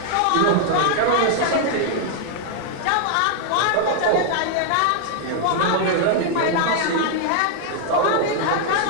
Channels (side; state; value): both; different; correlation -0.01